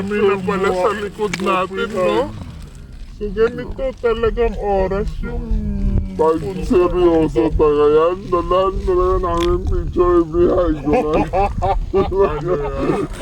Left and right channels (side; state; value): both; identical; correlation 1.00